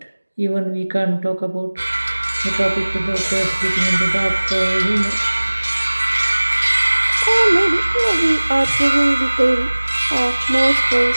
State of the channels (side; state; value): both; inverted; correlation -1.00